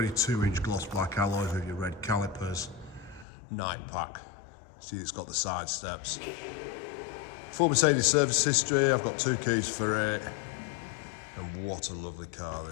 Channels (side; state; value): right; drops out; at 3.2 s